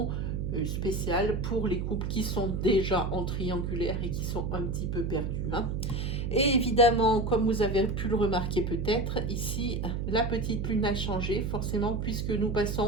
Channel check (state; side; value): noise; right; hum, 2 dB below the sound